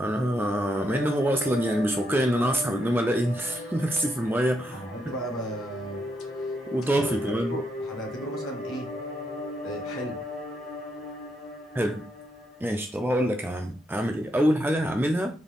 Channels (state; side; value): normal; both; correlation 0.79